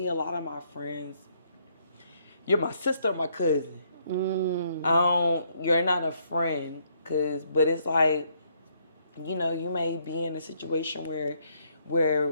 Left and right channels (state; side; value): inverted; both; correlation -0.70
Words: a lot of my friends, you're my sister or my cousin. You're not a friend, but it's like, you may be in a situation where